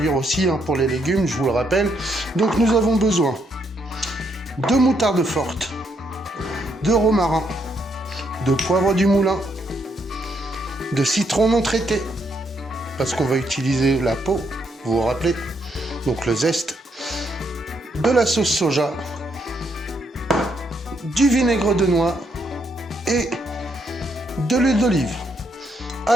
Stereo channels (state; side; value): normal; both; correlation 0.75